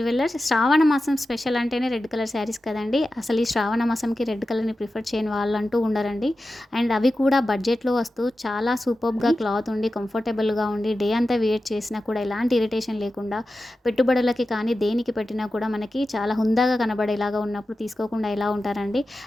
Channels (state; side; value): normal; both; correlation 0.93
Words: Shravana మాసం special అంటేనే red colour saris కదండి. అసలు ఈ శ్రావణ మాసంకి రెడ్ కలర్ని ప్రిఫర్ చేయని వాళ్ళంటూ ఉండరండి. అండ్ అవి కూడా బడ్జెట్లో వస్తూ చాలా సూపర్గా క్లాత్ ఉండి కంఫర్టబుల్గా ఉండి డే అంతా వేర్ చేసినా కూడా ఎలాంటి ఇరిటేషన్ లేకుండా పెట్టుబడులకి కానీ దేనికి పెట్టినా కూడా మనకి చాలా హుందాగా కనబడేలాగా ఉన్నప్పుడు తీసుకోకుండా ఎలా ఉంటారండి.